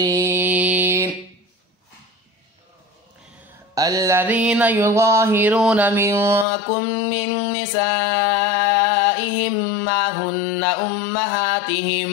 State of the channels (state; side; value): drops out; right; at 6.5 s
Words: الذين يظاهرون منكم من نسائهم ما هن